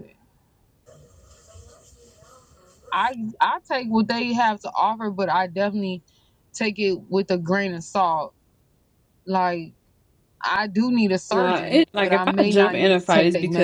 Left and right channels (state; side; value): identical; both; correlation 1.00